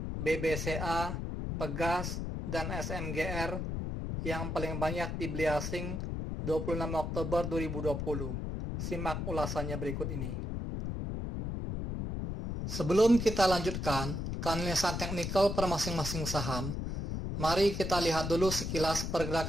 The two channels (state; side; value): noise; left; rumble, 3 dB below the sound